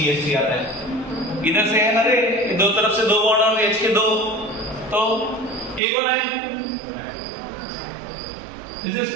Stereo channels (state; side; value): drops out; left; at 5.8 s